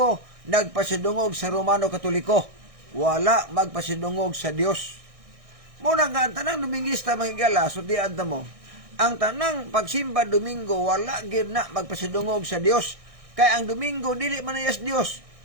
nagpasidungog sa Romano Katoliko. Wala magpasidungog sa Dios. Muna nga, ang tanang Domingista mahigala, so di anta mo, ang tanang pagsimba Domingo, wala gid na magpasidungog sa Dios. Kaya ang Domingo, dili man iyas Dios.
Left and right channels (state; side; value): late; left; 1.6 ms